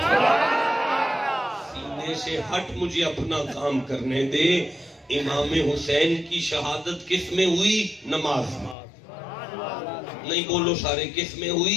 سینے سے ہٹ مجھے اپنا کام کرنے دے۔ امام حسین کی شہادت کس میں ہوئی؟ نماز میں۔ نہیں بولو سارے، کس میں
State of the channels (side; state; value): right; drops out; at 8.8 s